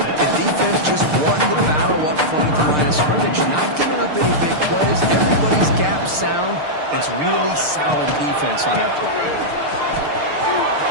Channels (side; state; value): left; late; 6.6 ms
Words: the defense just won the battle up front at the line of scrimmage, not giving up any big plays. Everybody's gap sound. It's really solid defense on that play.